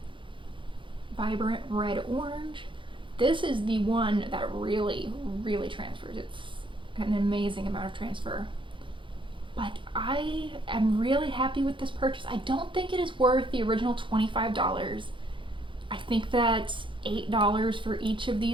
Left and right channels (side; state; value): left; late; 0.24 ms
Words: vibrant red orange. This is the one that really, really transfers. It's an amazing amount of transfer. But I am really happy with this purchase. I don't think it is worth the original $25. I think that $8 for each of